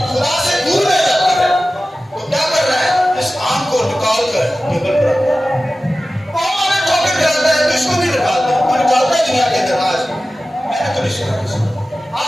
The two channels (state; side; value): normal; both; correlation 0.95